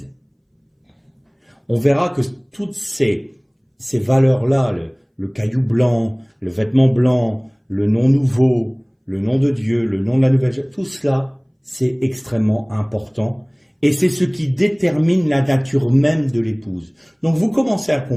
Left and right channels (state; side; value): identical; both; correlation 1.00